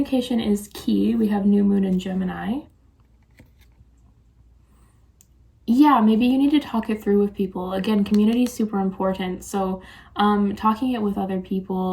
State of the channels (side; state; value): both; identical; correlation 1.00